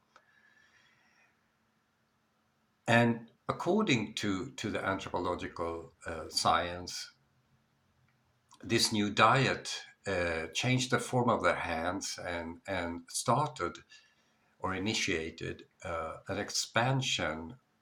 And according to the anthropological science, this new diet changed the form of their hands and started or initiated an expansion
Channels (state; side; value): identical; both; correlation 1.00